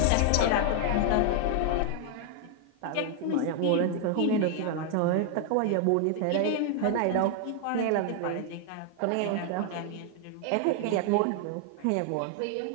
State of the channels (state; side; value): different; both; correlation 0.00